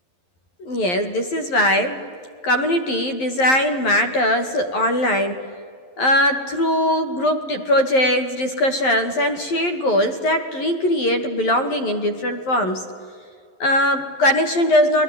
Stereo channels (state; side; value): late; right; 11 ms